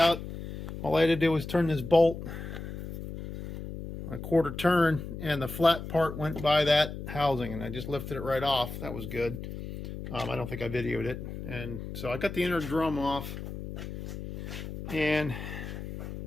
All I had to do was turn this bolt a 1/4 turn, and the flat part went by that housing, and I just lifted it right off. That was good. I don't think I videoed it. And so I got the inner drum off, and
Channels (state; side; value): noise; left; hum, 9 dB below the sound